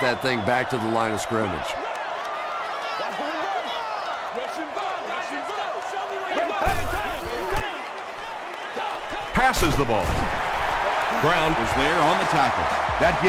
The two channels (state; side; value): identical; both; correlation 1.00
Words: thing back to the line of scrimmage. passes the ball. Brown was there on the tackle. That